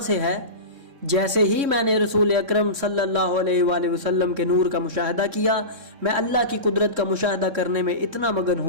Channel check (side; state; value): left; late; 3.6 ms